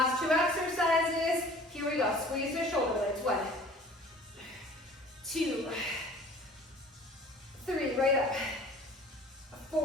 2 exercises. Here we go. Squeeze the shoulder blades. 1, 2, 3. Right up.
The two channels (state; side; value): normal; both; correlation 0.47